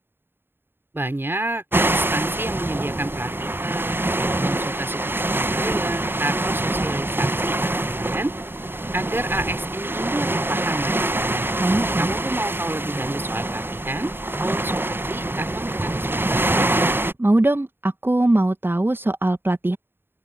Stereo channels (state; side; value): late; left; 0.10 ms